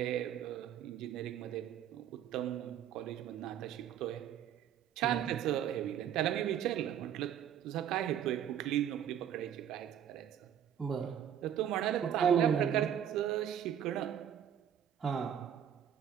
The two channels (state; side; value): quieter; left; 9.6 dB